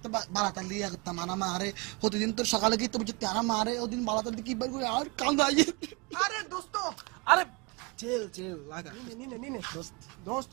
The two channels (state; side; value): quieter; left; 29.0 dB